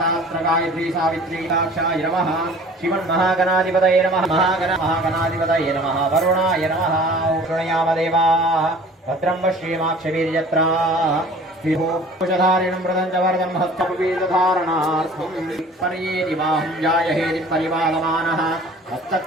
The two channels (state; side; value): normal; both; correlation 0.47